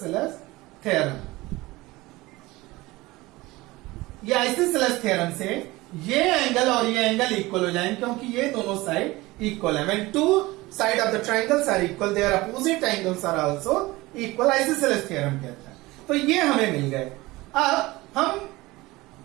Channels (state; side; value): quieter; left; 20.3 dB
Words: थ्योरम। ये आइसोसेलेस थ्योरम से ये एंगल और ये एंगल इक्वल हो जाएंगे क्योंकि ये दोनों साइड इक्वल है। When two side of the triangles are equal, their opposite angles are also equal, isosceles theorem कहता है। तो ये हमें मिल गए। अब हम